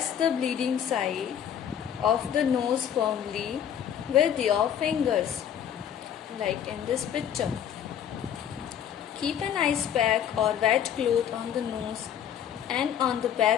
the bleeding side of the nose firmly with your fingers, like in this picture. Keep an ice pack or wet cloth on the nose and on the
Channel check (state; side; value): quieter; right; 9.3 dB